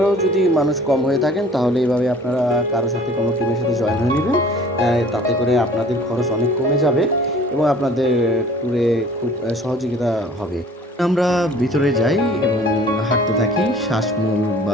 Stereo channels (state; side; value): normal; both; correlation 0.50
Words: যদি মানুষ কম হয়ে থাকেন তাহলে এইভাবে আপনারা কারোর সাথে কোনো টিমের সাথে জয়েন হয়ে নেবেন। তাতে করে আপনাদের খরচ অনেক কমে যাবে এবং আপনাদের ট্যুরে খুব সহযোগিতা হবে। আমরা ভিতরে যাই এবং হাঁটতে থাকি। শ্বাসমূল